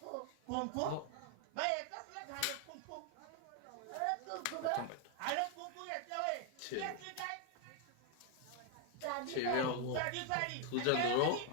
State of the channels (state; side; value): different; both; correlation 0.00